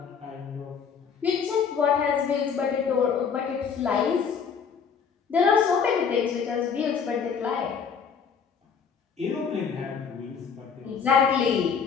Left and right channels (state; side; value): quieter; right; 6.5 dB